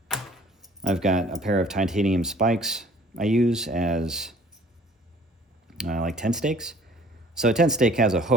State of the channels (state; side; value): normal; both; correlation 0.54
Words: I've got a pair of titanium spikes I use as like tent stakes. So a tent stake has a